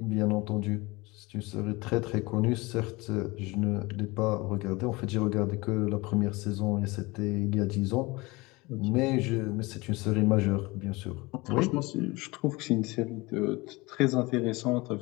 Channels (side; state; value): right; quieter; 23.4 dB